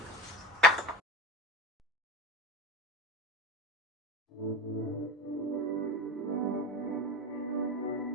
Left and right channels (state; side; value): normal; both; correlation 0.31